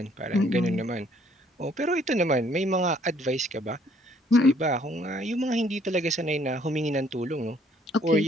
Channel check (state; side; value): normal; both; correlation 0.63